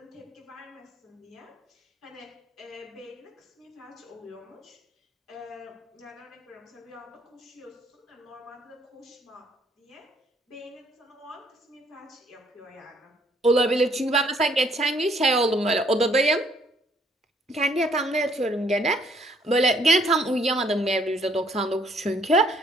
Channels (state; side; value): normal; both; correlation 0.65